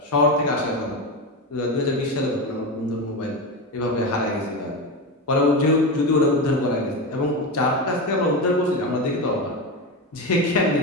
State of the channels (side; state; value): both; normal; correlation 0.18